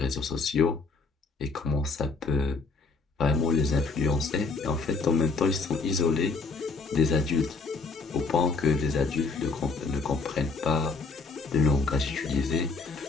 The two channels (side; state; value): right; quieter; 4.3 dB